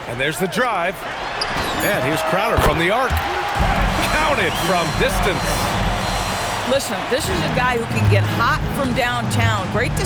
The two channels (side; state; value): both; identical; correlation 1.00